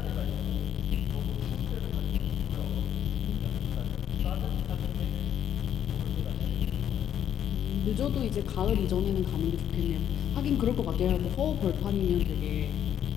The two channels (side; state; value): right; quieter; 9.8 dB